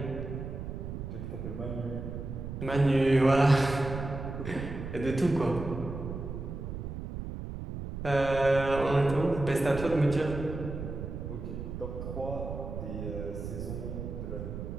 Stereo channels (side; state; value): right; noise; rumble, 7 dB below the sound